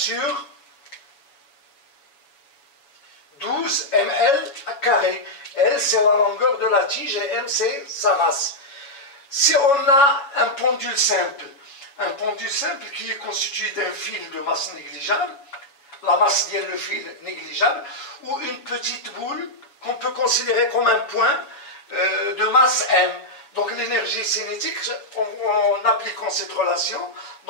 12 mL carré. L c'est la longueur de la tige et M c'est sa masse. Si on a un pendule simple qui est constitué d'un fil de masse négligeable, la masse de le fil négligeable, ou une petite boule qu'on peut considérer comme un point de masse M. Donc l'énergie cinétique, en appliquant cette relation,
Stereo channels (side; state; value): right; late; 7.2 ms